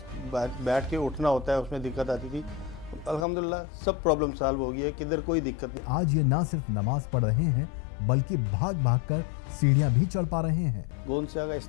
बैठ के उठना होता है, उसमें दिक्कत आती थी। अल्हम्दुलिल्लाह सब प्रॉब्लम सॉल्व हो गई है, किधर कोई दिक्कत नहीं। आज ये ना सिर्फ नमाज पढ़ रहे हैं बल्कि भाग भाग कर सीढ़ियां भी चढ़ पा रहे हैं। गोंद स्या का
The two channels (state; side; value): drops out; right; at 3.2 s